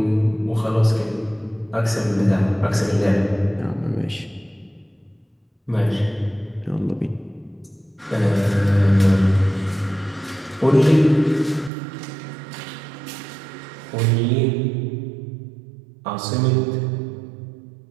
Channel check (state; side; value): drops out; left; at 11.7 s